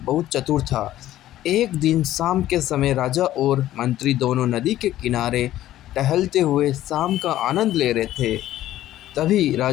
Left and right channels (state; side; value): quieter; right; 13.7 dB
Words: चतुर था। एक दिन शाम के समय राजा और मंत्री दोनों नदी के किनारे टहलते हुए शाम का आनंद ले रहे थे। तभी